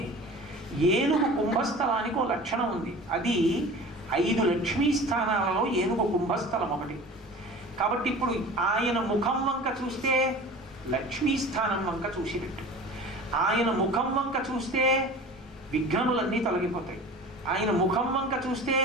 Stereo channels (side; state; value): both; normal; correlation 0.39